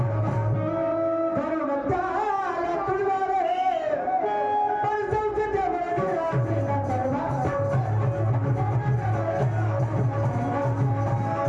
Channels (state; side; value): identical; both; correlation 1.00